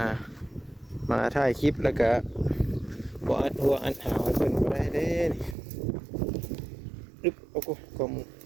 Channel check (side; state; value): left; drops out; at 5.6 s